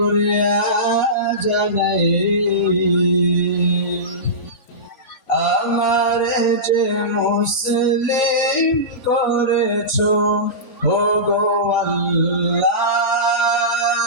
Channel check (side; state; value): right; late; 3.5 ms